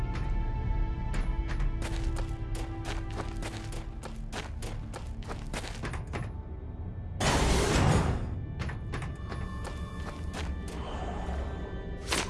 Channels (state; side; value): identical; both; correlation 1.00